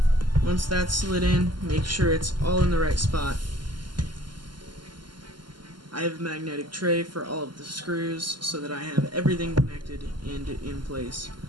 Once that's slid in, make sure it's all in the right spot. I have a magnetic tray for all of the screws so that I have everything connected and in place.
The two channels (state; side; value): late; left; 0.71 ms